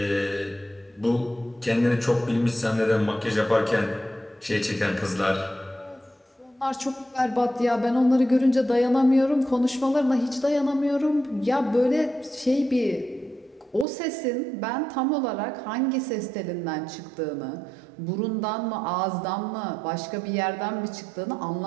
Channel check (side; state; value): left; drops out; at 13.9 s